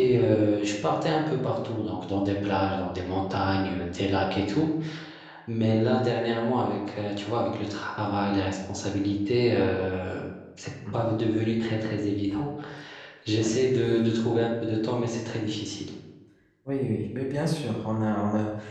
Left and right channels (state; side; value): identical; both; correlation 1.00